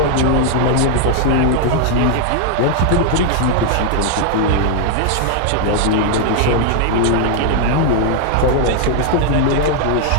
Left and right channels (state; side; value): different; both; correlation 0.00